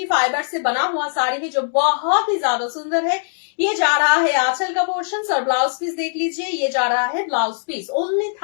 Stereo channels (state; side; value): silent; right; digital silence